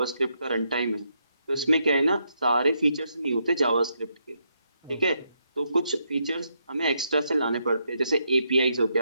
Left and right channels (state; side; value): inverted; both; correlation -0.79